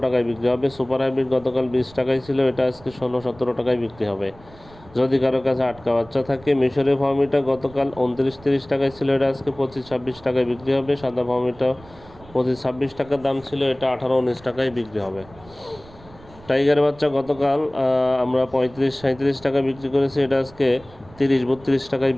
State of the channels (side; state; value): right; noise; rumble, 23 dB below the sound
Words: টাকায় বিক্রি হবে। সুপার হাইব্রিড গতকাল 20 টাকায় ছিল, এটা আজকে 16-17 টাকায় বিক্রি হবে যদি কারো কাছে আটকা বাচ্চা থাকে। মিশরের ফার্মিটা গতকাল 29-30 টাকায় ছিল, এটা আজকে 25-26 টাকায় বিক্রি হবে। সাদা ফার্মিটা 25-26 টাকার দাম ছিল, এটা 18-19 টাকায় বিক্রি হবে। টাইগার বাচ্চা গতকাল আমরা 35-37 টাকা বিক্রি করেছি, এটা আজকে 30-32 টাকায়